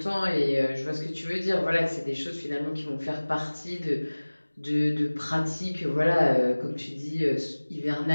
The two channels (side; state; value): both; inverted; correlation -1.00